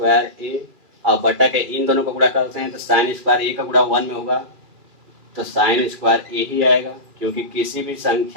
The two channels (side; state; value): left; late; 2.4 ms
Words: ए, और बटा के इन दोनों का गुणा करते हैं तो साइन स्क्वायर ए का गुणा 1 में होगा तो साइन स्क्वायर ए ही आएगा, क्योंकि किसी भी